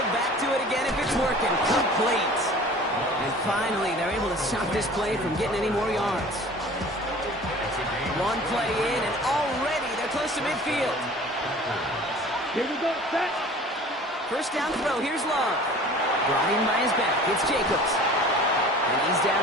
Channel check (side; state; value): both; normal; correlation 0.44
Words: back to it again if it's working? Complete. And finally, they're able to stop this play from getting any more yards. One play in, and already they're close to midfield. Here we go, set. First down throw, here's Love. Brought in by his back, it's Jacobs. And he's